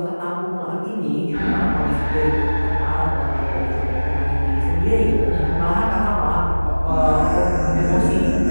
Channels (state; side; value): inverted; both; correlation -1.00